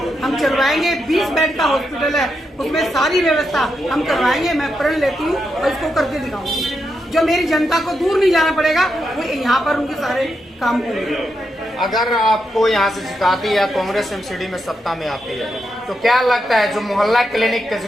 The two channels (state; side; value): normal; both; correlation 0.84